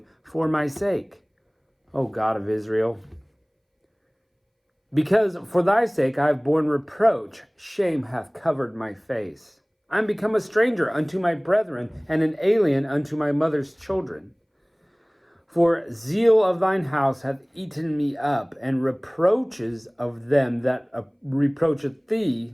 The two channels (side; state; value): both; identical; correlation 1.00